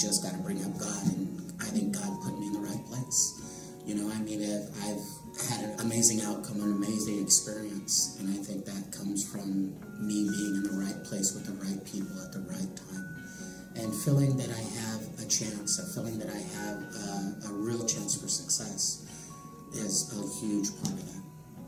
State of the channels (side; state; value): both; identical; correlation 1.00